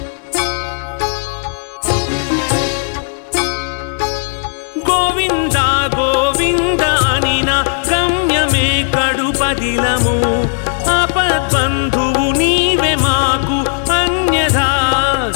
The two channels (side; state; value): right; silent; digital silence